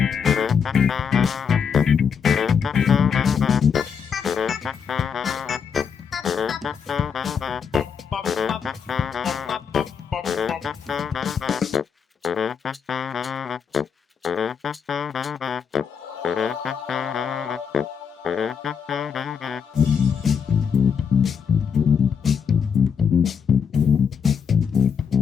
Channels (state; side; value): quieter; right; 6.9 dB